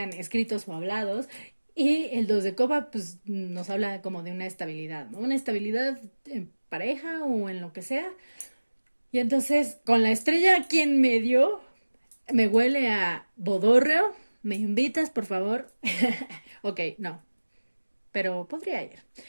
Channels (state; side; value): inverted; both; correlation -1.00